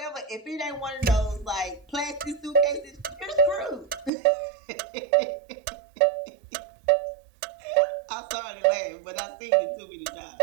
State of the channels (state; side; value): drops out; left; at 4.1 s